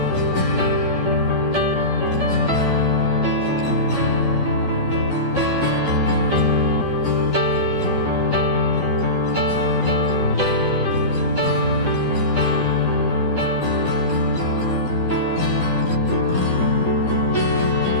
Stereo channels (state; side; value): late; right; 12 ms